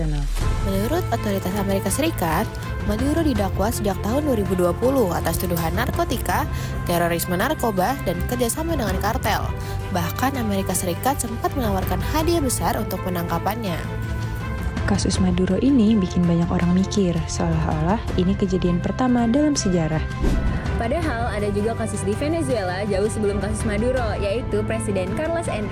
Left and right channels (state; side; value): identical; both; correlation 1.00